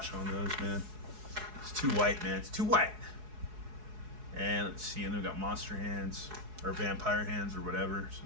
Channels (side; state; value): left; late; 4.7 ms